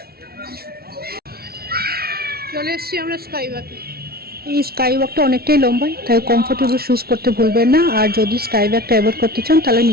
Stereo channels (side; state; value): left; late; 0.44 ms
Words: চলে এসেছি আমরা স্কাই ওয়াকে। এই স্কাই ওয়াকটা অনেকটাই লম্বা, তাই কমফোর্টেবল শুজ পরতে ভুলবেন না। আর যদি স্কাই ওয়াকটা অ্যাভয়েড করতে চান তাহলে